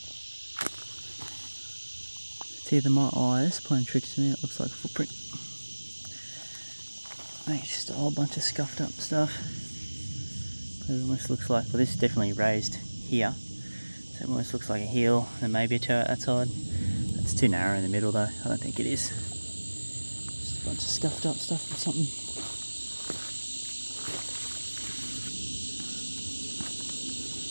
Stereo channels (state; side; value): inverted; both; correlation -1.00